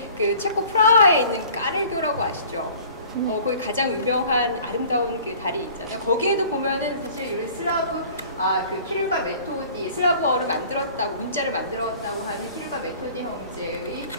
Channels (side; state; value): both; inverted; correlation -0.48